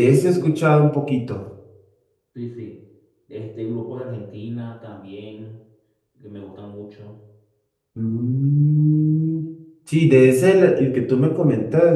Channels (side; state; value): both; identical; correlation 1.00